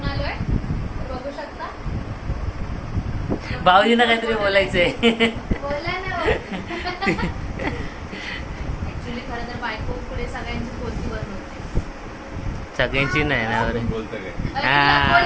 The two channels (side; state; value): both; identical; correlation 1.00